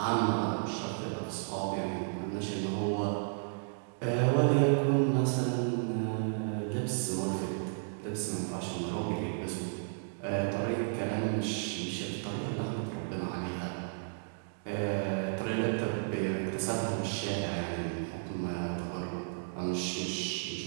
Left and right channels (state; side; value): silent; left; digital silence